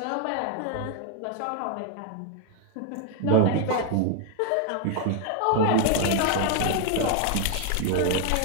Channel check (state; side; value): different; both; correlation 0.00